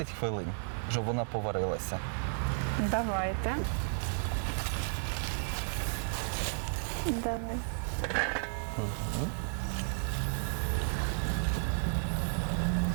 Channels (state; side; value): silent; left; digital silence